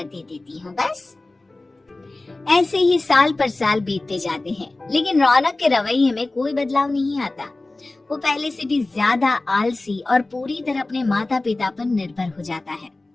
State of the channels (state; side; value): quieter; right; 3.0 dB